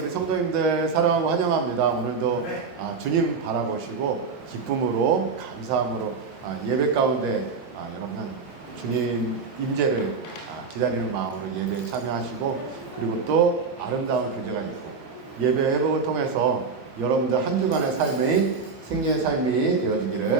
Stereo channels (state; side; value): quieter; left; 4.9 dB